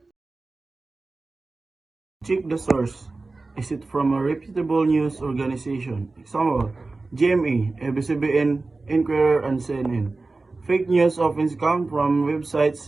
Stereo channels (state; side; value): quieter; left; 3.5 dB